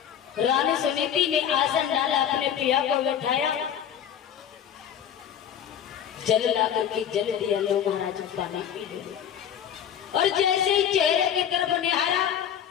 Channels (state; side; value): quieter; right; 9.1 dB